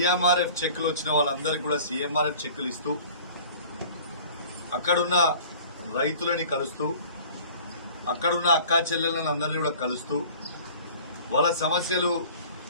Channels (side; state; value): both; inverted; correlation -0.46